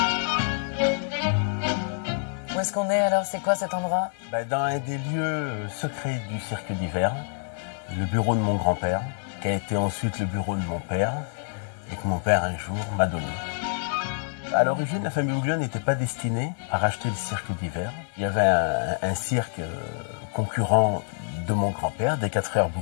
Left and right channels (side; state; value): right; silent; 60 dB below the other